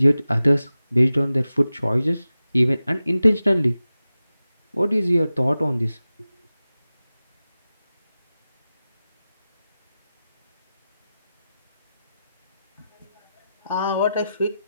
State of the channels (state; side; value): inverted; both; correlation -0.93